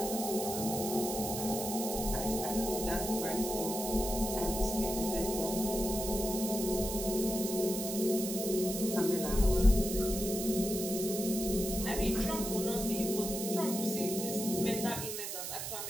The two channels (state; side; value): noise; right; hiss, 5 dB below the sound